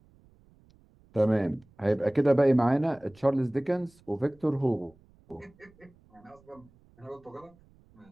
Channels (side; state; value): right; noise; rumble, 30 dB below the sound